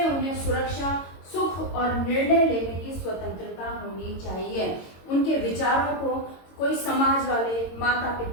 उन्हें सुरक्षा, सुख और निर्णय लेने की स्वतंत्रता होनी चाहिए। उनके विचारों को कोई समाज वाले, माता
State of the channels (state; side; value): late; right; 22 ms